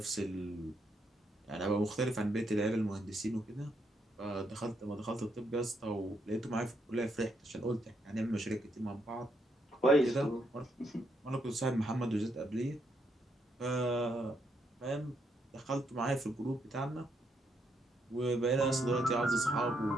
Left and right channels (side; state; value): both; normal; correlation 0.77